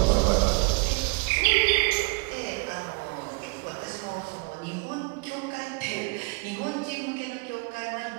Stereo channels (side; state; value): left; quieter; 29.0 dB